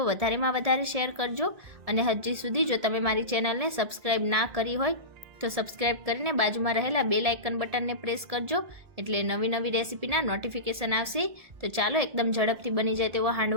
વધારેમાં વધારે શેર કરજો અને હજી સુધી જો તમે મારી ચેનલને સબસ્ક્રાઈબ ના કરી હોય તો સબસ્ક્રાઈબ કરીને બાજુમાં રહેલા બેલ આઇકન બટનને પ્રેસ કરજો, એટલે નવી નવી રેસીપીના નોટિફિકેશન આવશે। તો ચાલો એકદમ ઝડપથી બની જાય તેવો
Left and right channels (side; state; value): left; late; 1.7 ms